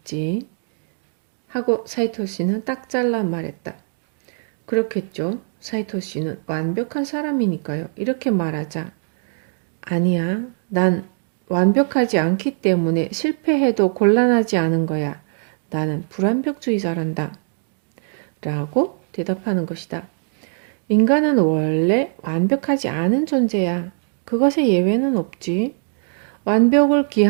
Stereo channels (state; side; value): silent; left; digital silence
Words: 하고 사이토 씨는 딱 잘라 말했다. 그렇겠죠. 사이토 씨는 완벽한 사람이니까요. 이렇게 말하자. 아니야. 난 완벽하지 않기 때문에 실패해도 곤란하지 않은 거야. 나는 불완벽주의자란다. 라고 대답하는 것이다. 인간은 원래 완벽하지 않은 존재야. 그것에 예외는 없지. 완벽을